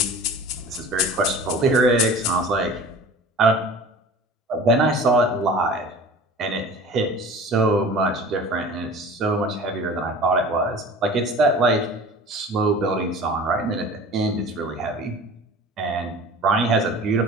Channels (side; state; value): both; normal; correlation 0.41